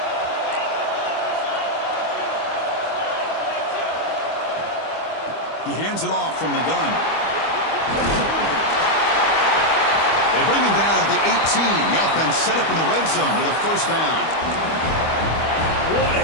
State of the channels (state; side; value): late; right; 25 ms